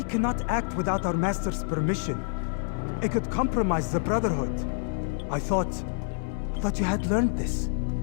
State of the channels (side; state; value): right; silent; 60 dB below the other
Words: cannot act without our master's permission. It could compromise the Brotherhood. I thought you had learned this.